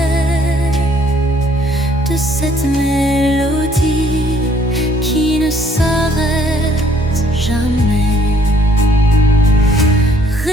de cette mélodie qui ne s'arrête jamais.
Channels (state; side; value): normal; both; correlation 0.63